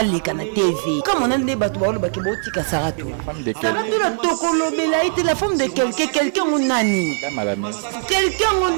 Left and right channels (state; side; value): silent; left; 66 dB below the other